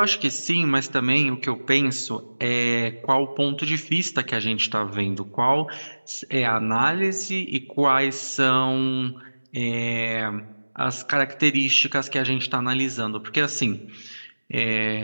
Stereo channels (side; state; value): both; inverted; correlation -1.00